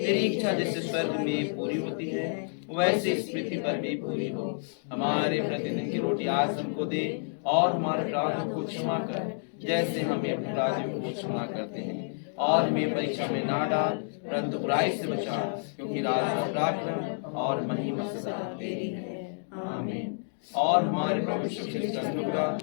इच्छा जैसे स्वर्ग में पूरी होती है वैसे इस पृथ्वी पर भी पूरी हो। हमारे प्रतिदिन की रोटी आज हमको दे और हमारे अपराधों को क्षमा कर जैसे हम अपने अपराधियों को क्षमा करते हैं, और हमें परीक्षा में ना डाल परंतु बुराई से बचा, क्योंकि राज पराक्रम और महिमा सदा तेरी है आमीन। और हमारे प्रभु यीशु मसीह का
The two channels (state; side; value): silent; right; digital silence